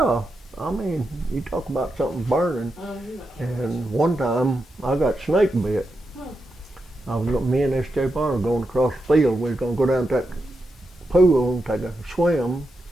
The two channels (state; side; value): normal; both; correlation 0.87